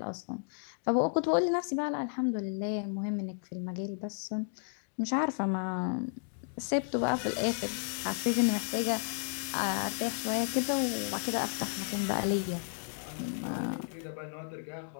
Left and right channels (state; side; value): silent; right; digital silence